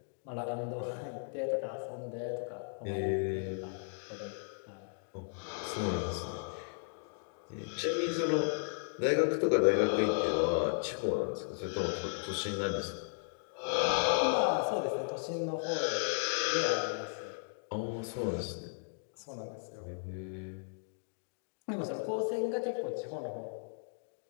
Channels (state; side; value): silent; right; digital silence